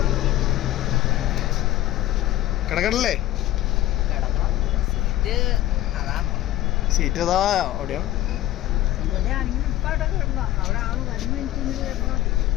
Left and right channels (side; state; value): right; quieter; 14.6 dB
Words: കിടക്കണല്ലേ? സീറ്റ് അതാ അവിടെയോ?